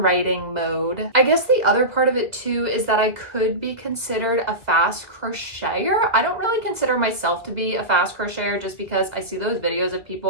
writing mode. I guess the other part of it too is that I could be considered a fast crocheter. I don't really consider myself to be a fast fast crocheter just because I see those videos of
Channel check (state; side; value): late; left; 2.0 ms